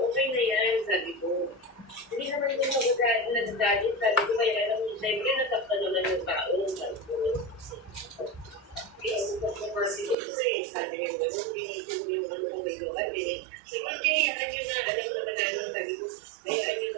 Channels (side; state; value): left; drops out; at 10.2 s